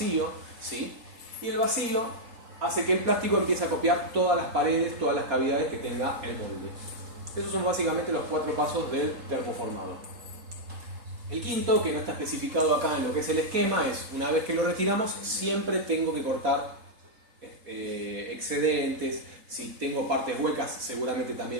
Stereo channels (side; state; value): left; late; 3.8 ms